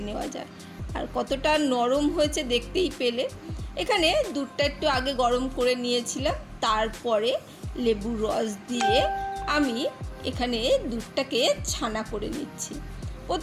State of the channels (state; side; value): identical; both; correlation 1.00